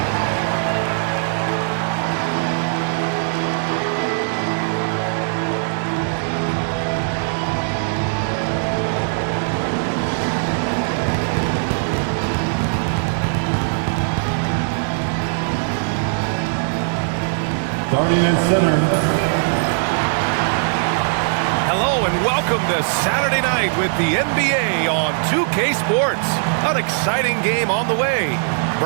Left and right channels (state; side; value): silent; left; 57 dB below the other